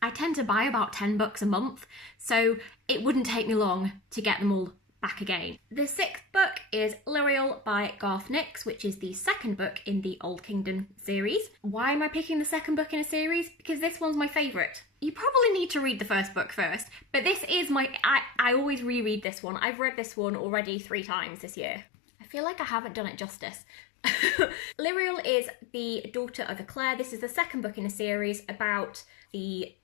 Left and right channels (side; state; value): right; drops out; at 19.2 s